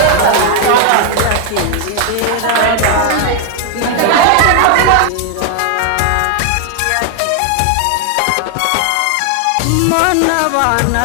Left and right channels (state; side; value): different; both; correlation 0.00